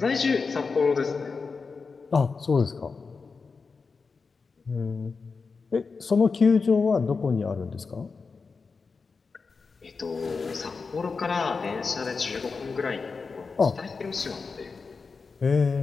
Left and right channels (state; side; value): quieter; right; 4.7 dB